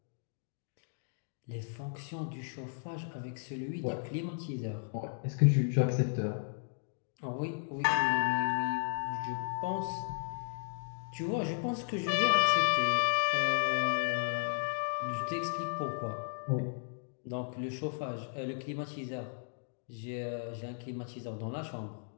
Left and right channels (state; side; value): silent; right; digital silence